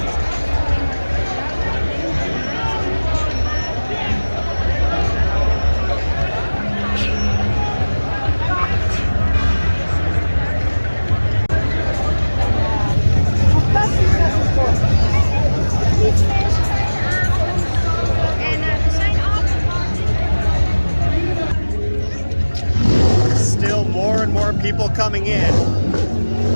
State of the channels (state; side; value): inverted; both; correlation -1.00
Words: Still more and more people coming in.